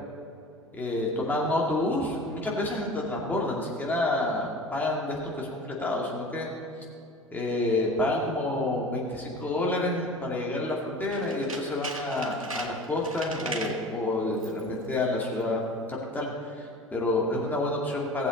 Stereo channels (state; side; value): normal; both; correlation 0.39